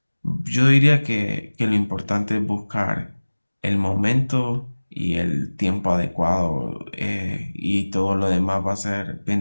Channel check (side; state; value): both; inverted; correlation -1.00